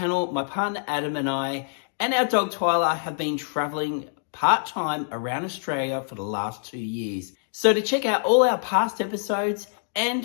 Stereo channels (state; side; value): silent; right; digital silence